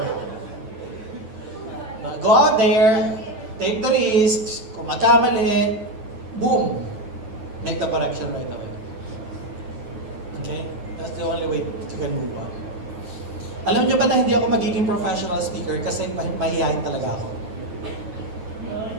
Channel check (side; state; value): left; late; 9.0 ms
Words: Go out there, take the risks, kung magkamali, boom, make the correction right away. Okay? That's the only way you can move on. Alam nyo ba na hindi ako magiging professional speaker kasi mahihayin talaga ako.